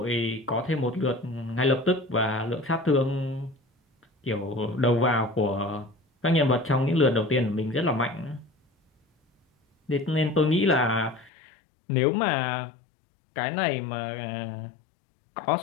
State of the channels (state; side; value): drops out; right; at 11.3 s